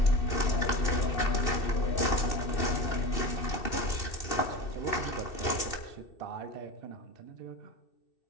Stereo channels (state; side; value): late; right; 2.6 ms